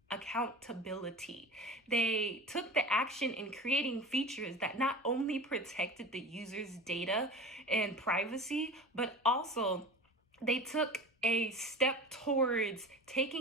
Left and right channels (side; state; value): both; normal; correlation 0.33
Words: accountability. They took the action in creating features that not only protected the user's data and privacy, but also they took a step towards